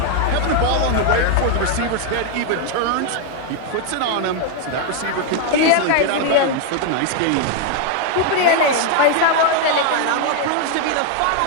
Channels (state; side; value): different; both; correlation 0.00